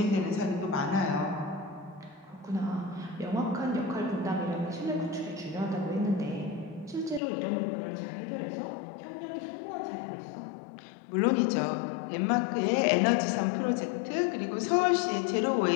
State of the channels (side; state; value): right; drops out; at 7.2 s